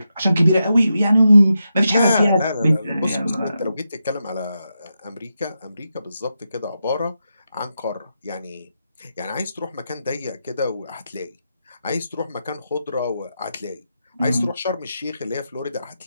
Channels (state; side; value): inverted; both; correlation -0.87